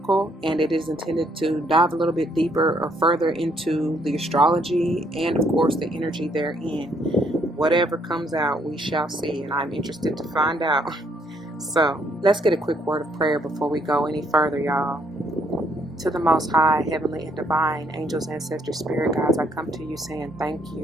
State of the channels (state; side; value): normal; both; correlation 0.69